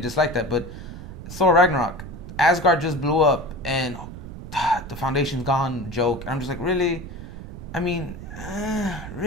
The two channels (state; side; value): noise; right; rumble, 11 dB below the sound